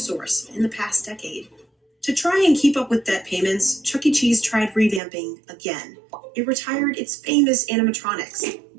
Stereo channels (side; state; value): left; drops out; at 5.0 s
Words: in the past decade. To try and keep up with debt payments, Chuck E. Cheese tried revamping again. It retired its famous animatronics,